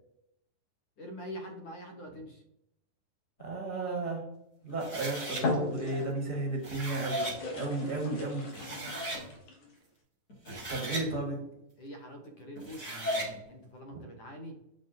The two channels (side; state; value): right; late; 9.4 ms